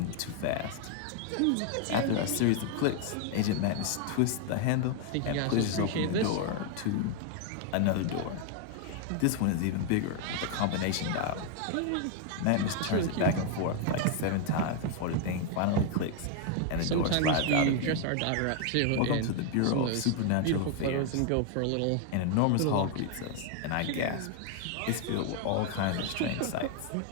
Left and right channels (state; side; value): different; both; correlation 0.00